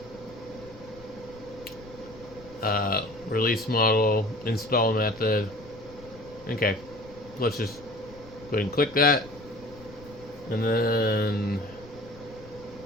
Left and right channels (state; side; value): noise; left; rumble, 20 dB below the sound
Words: release model, install method. Okay, let's just go ahead and click that. And then